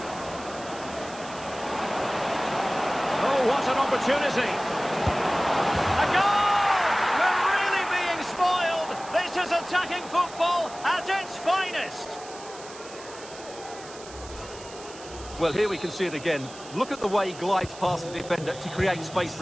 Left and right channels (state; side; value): noise; right; hiss, 17 dB below the sound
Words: Oh, what an opportunity! A goal! We're really being spoiled! This is attacking football at its finest! Well, here we can see it again. Look at the way he glides past the defender to create space